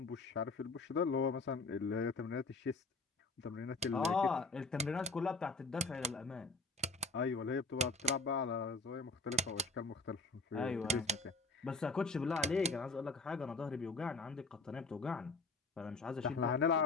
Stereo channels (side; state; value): right; quieter; 3.5 dB